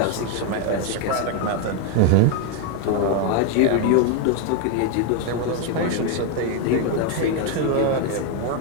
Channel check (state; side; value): different; both; correlation 0.01